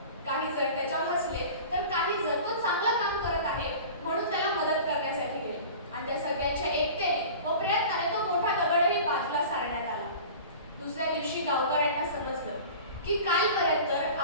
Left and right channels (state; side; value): inverted; both; correlation -0.38